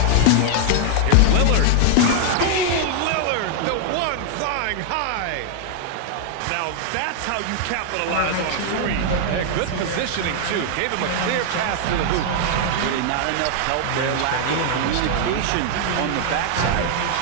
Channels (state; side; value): different; both; correlation 0.00